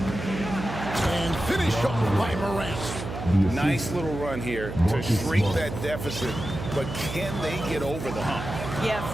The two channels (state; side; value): noise; right; hum, 7 dB below the sound